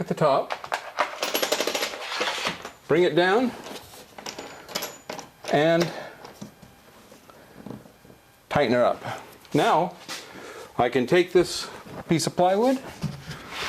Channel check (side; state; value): both; identical; correlation 1.00